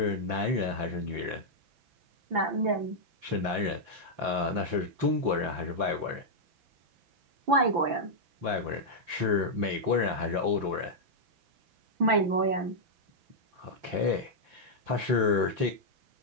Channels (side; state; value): left; late; 5.8 ms